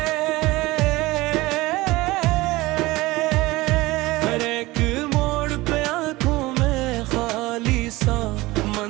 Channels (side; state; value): left; quieter; 20.1 dB